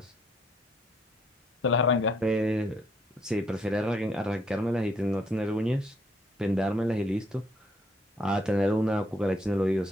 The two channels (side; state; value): both; normal; correlation 0.69